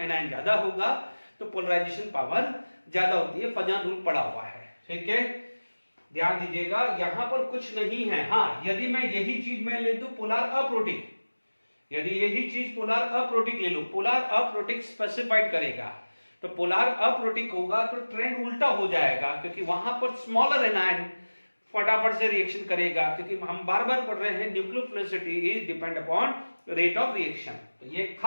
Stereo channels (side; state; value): both; inverted; correlation -1.00